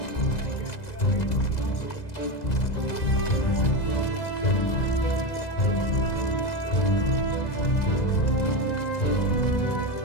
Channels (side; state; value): right; late; 2.0 ms